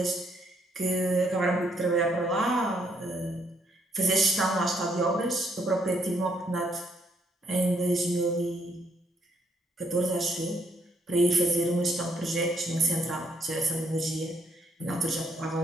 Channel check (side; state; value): both; normal; correlation 0.71